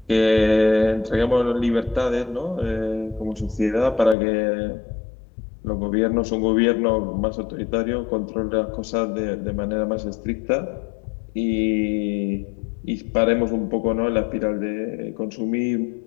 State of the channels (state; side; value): drops out; right; at 4.2 s